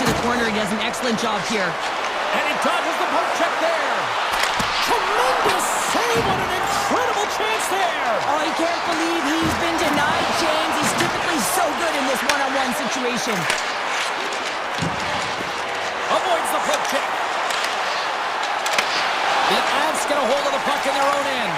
the corner. He does an excellent job here. And he dodges the poke check there. Tremendous save. What an incredible chance there. Oh, I can't believe he's been denied, James. He's typically so good in this one-on-one situation. Avoids the poke check. The Avs get a hold of the puck in their own end.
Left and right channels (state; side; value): identical; both; correlation 1.00